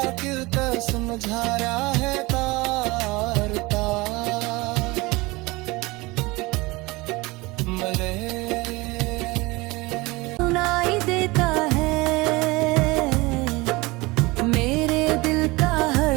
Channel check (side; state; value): left; quieter; 23.0 dB